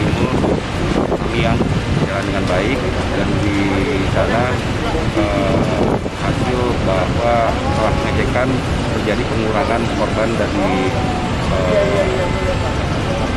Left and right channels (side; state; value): both; identical; correlation 1.00